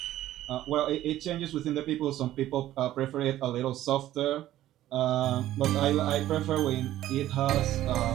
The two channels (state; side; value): quieter; left; 13.7 dB